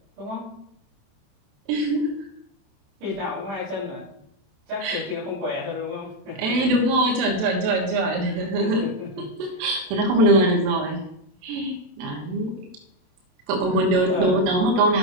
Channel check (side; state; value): left; late; 27 ms